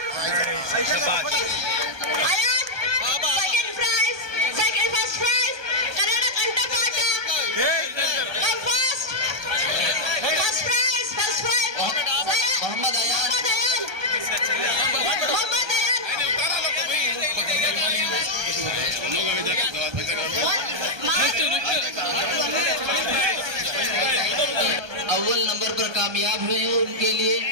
Ayat, second prize, first prize Kannada ಕಂಠಪಾಠ. First prize Mohammad Ayan. अव्वल नंबर पर कामयाब हुए हैं, उनके लिए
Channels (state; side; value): late; left; 1.2 ms